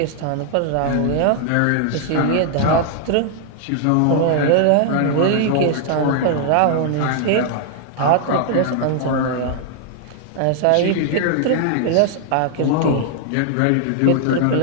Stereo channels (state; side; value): different; both; correlation 0.00